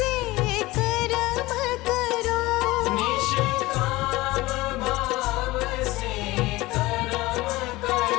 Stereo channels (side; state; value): right; quieter; 19.8 dB